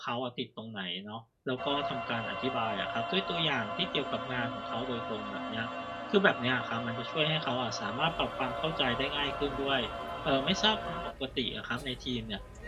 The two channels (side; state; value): both; identical; correlation 1.00